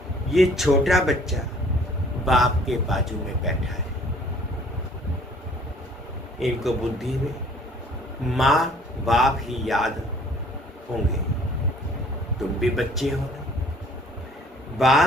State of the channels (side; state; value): both; normal; correlation 0.55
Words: ये छोटा बच्चा बाप के बाजू में बैठा है। इनको बुद्धि में माँ बाप ही याद होंगे। तुम भी बच्चे हो ना।